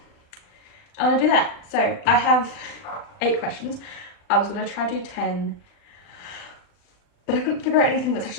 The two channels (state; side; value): late; right; 39 ms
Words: I want to do that. So I have 8 questions. I was going to try to do 10, but I couldn't figure out anything that's